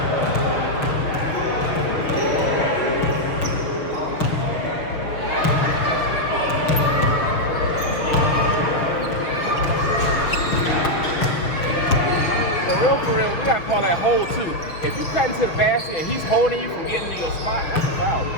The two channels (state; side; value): late; right; 6.7 ms